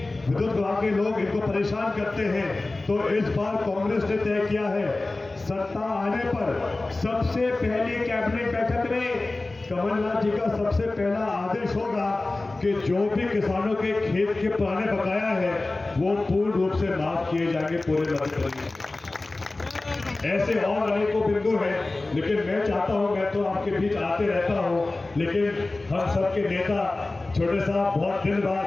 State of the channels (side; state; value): right; quieter; 3.1 dB